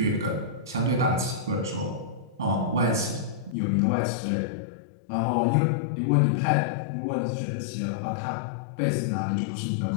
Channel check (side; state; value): right; drops out; at 3.6 s